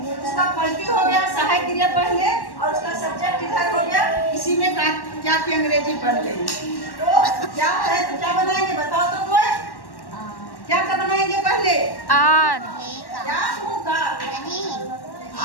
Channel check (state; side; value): late; right; 1.1 ms